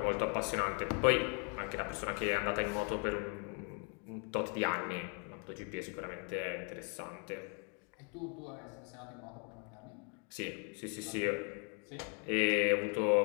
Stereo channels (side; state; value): right; quieter; 38.5 dB